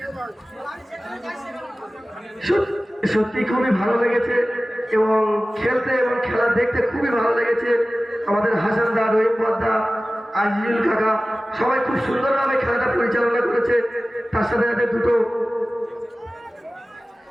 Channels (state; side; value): normal; both; correlation 0.97